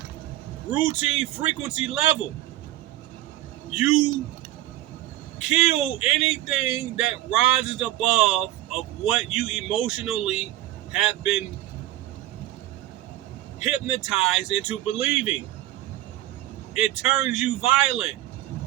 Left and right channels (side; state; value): left; quieter; 15.1 dB